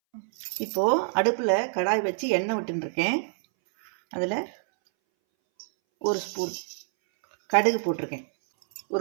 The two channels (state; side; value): silent; left; 61 dB below the other